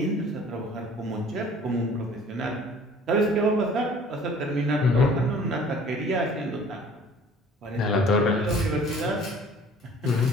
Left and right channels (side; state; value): both; normal; correlation 0.50